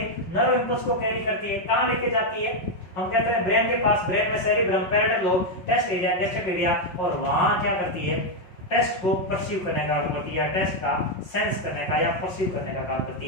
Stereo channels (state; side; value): late; right; 5.4 ms